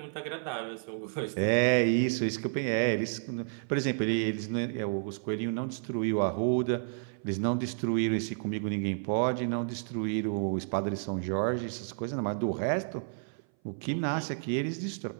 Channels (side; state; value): left; silent; 57 dB below the other